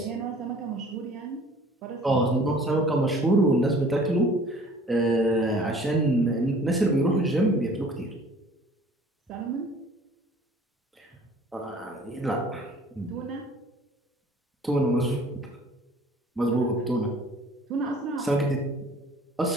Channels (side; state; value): both; normal; correlation 0.51